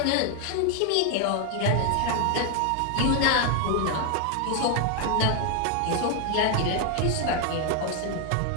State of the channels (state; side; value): different; both; correlation 0.00